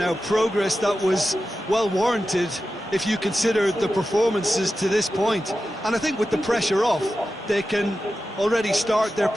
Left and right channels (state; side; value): normal; both; correlation 0.92